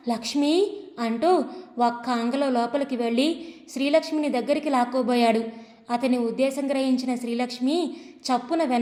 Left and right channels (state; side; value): identical; both; correlation 1.00